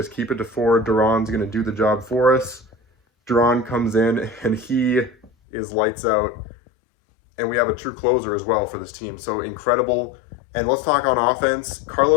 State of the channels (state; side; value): drops out; right; at 5.3 s